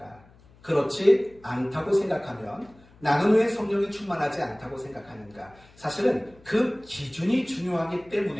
그렇지 않다고 생각하면 나는 왜 성령이 충만하지 않다고 생각하는가? 사실은 그 기준이 중요하기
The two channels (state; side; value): noise; left; hum, 27 dB below the sound